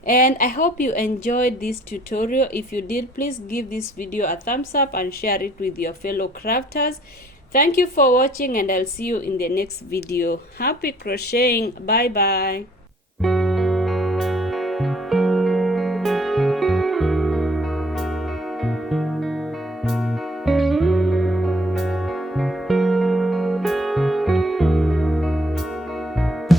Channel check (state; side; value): normal; both; correlation 0.60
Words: and I hope you enjoyed this tutorial. If you did, please give this video a thumbs up and share it with your fellow crafters. Thank you for watching, and I'll see you in the next video. Happy crocheting. Bye bye.